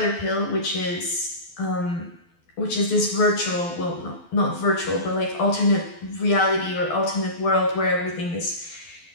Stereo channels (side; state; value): right; late; 12 ms